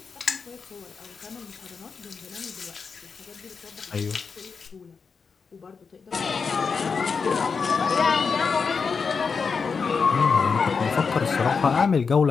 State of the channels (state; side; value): quieter; right; 5.3 dB